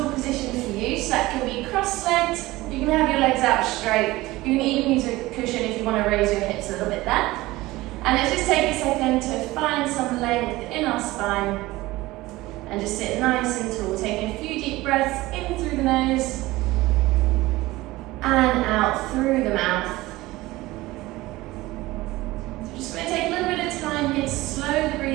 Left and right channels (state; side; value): quieter; left; 19.0 dB